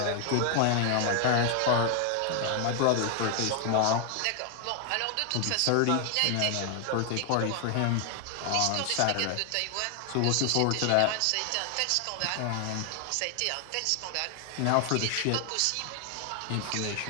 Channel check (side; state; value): both; different; correlation 0.00